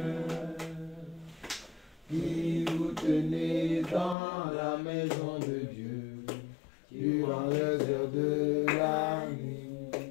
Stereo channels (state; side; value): drops out; right; at 4.2 s